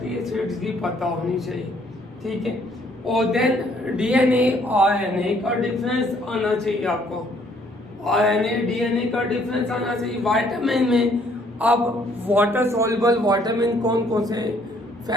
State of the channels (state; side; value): normal; both; correlation 0.64